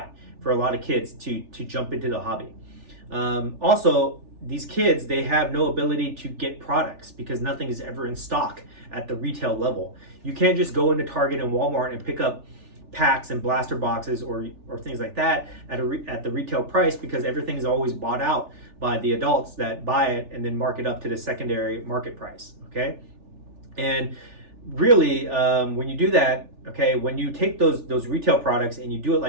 for a lot of kids to jump into the hobby. Also, these kids, they have no ability to get products because nothing is ever in stock at the retail level. You can't just go into Target and Walmart and pick up packs and blaster boxes or things like that at the retail price because everything is always bought out by the adults that buy it and then mark it up to the secondary market price, okay? And really, when you do that, okay, when you take those retail products and you do it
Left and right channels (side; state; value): left; late; 3.4 ms